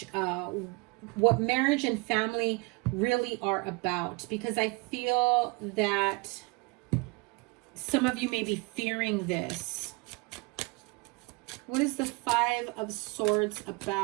and family really are about. Because I feel that some of you may be fearing this. What is the 5 of Swords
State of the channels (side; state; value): left; quieter; 27.8 dB